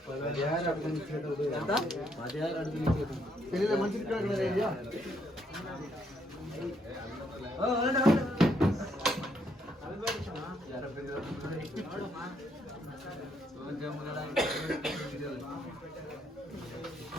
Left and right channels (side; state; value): both; normal; correlation 0.72